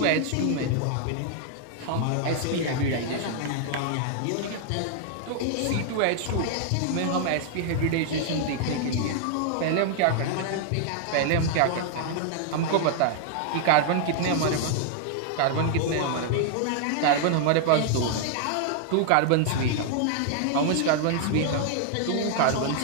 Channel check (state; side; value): different; both; correlation 0.00